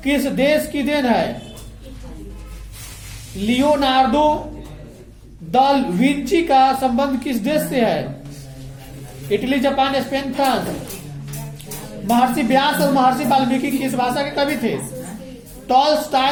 किस देश की देन है? लियोनार्डो दा विंची का संबंध किस देश से है? Italy, Japan, Spain, France? महर्षि व्यास और महर्षि वाल्मीकि किस भाषा के कवि थे?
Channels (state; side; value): identical; both; correlation 1.00